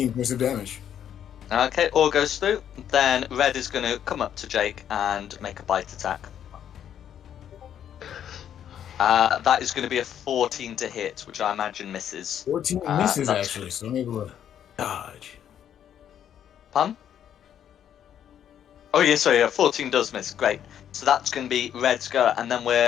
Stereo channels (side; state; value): right; quieter; 9.7 dB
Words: points of damage. Okay, all goes through. Then Red is going to come up to Jake and make a bite attack. That is going to be a 14 to hit, which I imagine misses. 14 misses, That's... actually, so I'm able to dodge. Pun? Oh, yeah, sorry, 14 does miss. Great. So that's going to be Red's go, and then